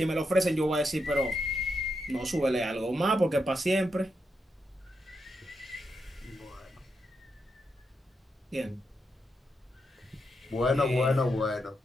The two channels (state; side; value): normal; both; correlation 0.83